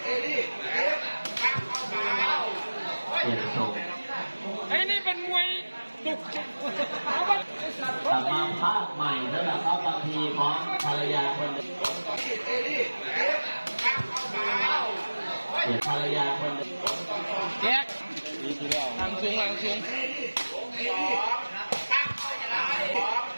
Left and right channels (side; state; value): both; inverted; correlation -1.00